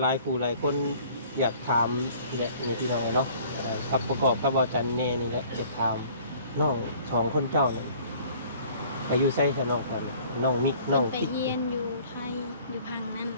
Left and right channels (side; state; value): both; inverted; correlation -0.53